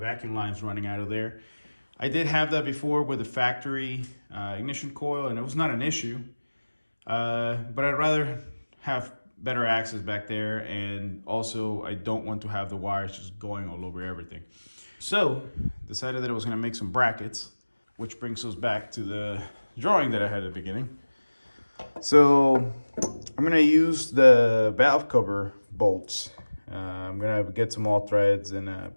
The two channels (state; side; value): inverted; both; correlation -1.00